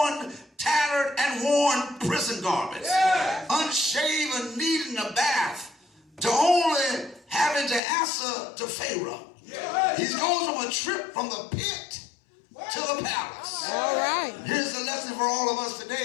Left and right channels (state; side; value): drops out; right; at 7.8 s